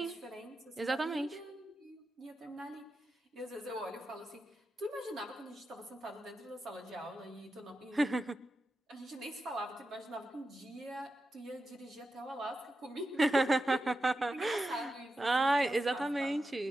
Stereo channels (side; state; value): both; normal; correlation 0.90